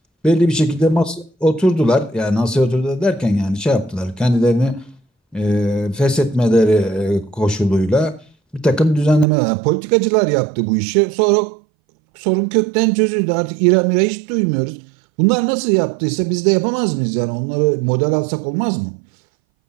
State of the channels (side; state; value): left; drops out; at 9.2 s